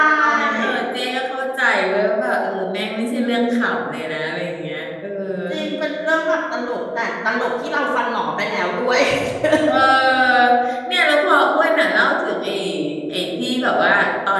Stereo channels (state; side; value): identical; both; correlation 1.00